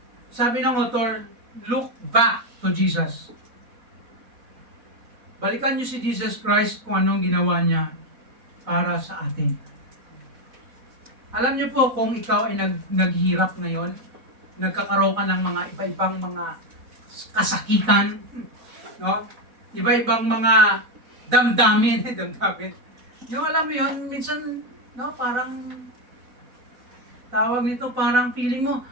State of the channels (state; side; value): late; left; 4.1 ms